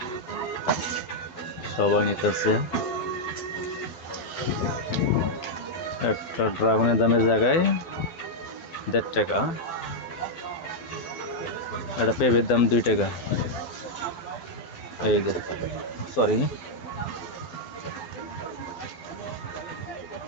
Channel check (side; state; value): right; late; 12 ms